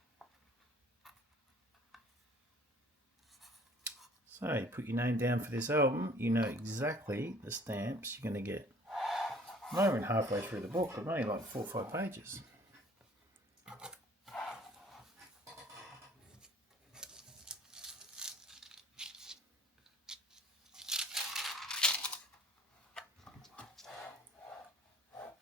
So you put your name down for this album, you know exactly the stamps you're going to get. I'm not even halfway through the book, I'm only like 4 or 5 pages.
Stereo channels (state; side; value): normal; both; correlation 0.53